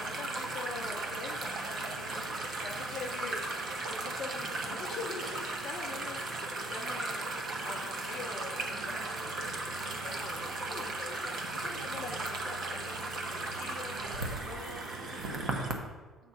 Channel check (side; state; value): both; normal; correlation 0.63